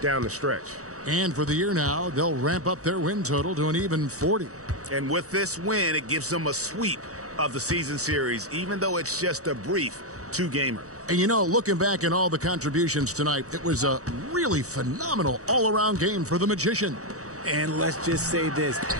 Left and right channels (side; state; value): left; late; 0.65 ms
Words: down the stretch. And for the year now, they'll ramp up their win total to an even 40. And with this win, it gives them a sweep of the season series, even though it's just a brief 2-gamer. And you know, looking back at all the contributions tonight, it was a really phenomenal all-around game for the Magician. And let's just say this,